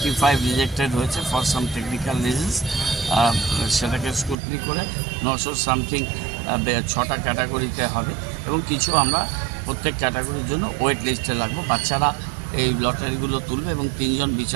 রিজেক্টেড হয়েছে ফর সাম টেকনিক্যাল রিজনস। সেটাকে স্ক্রুটনি করে 900 সামথিং 6টা ক্যাটাগরিতে হবে এবং কিছু আমরা প্রত্যেক ক্যাটাগরির জন্য ওয়েট লিস্টে রাখবো। বাচ্চারা এই লটারিগুলো তুলবে এবং 3 জন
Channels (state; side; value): drops out; left; at 4.4 s